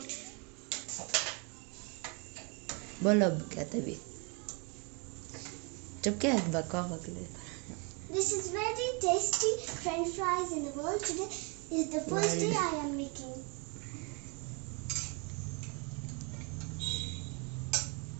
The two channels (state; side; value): quieter; left; 33.5 dB